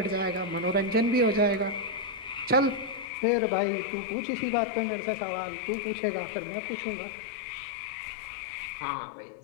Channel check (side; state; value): right; drops out; at 3.1 s